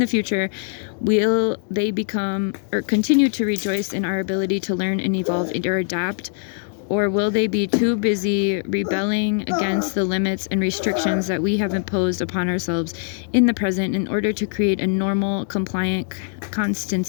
future, will they become or continue to rejoice in our ability to learn and evolve or adapt? Or will they be too busy rebelling against the limits and restrictions that we have imposed upon ourselves in the present in order to create a normal, compliant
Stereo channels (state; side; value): silent; right; 64 dB below the other